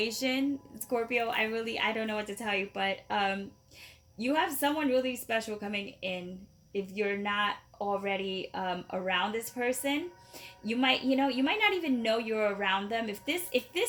Scorpio, I don't know what to tell you, but you have someone really special coming in. If you're not already around this person, you might not even know you're around them. If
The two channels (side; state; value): both; identical; correlation 1.00